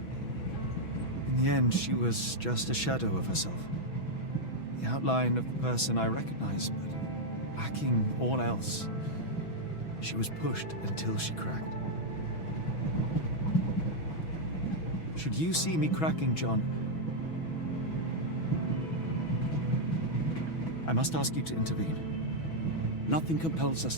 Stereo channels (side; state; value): right; late; 6.1 ms